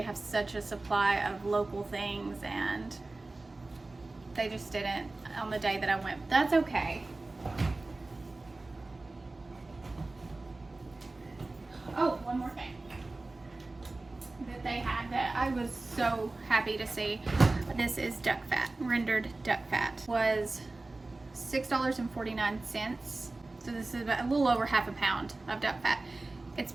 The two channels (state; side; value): quieter; left; 3.2 dB